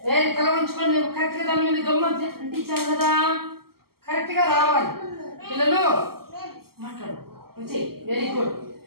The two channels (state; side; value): late; left; 0.94 ms